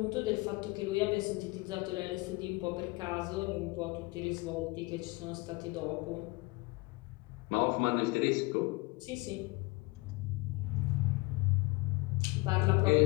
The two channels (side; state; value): right; quieter; 24.8 dB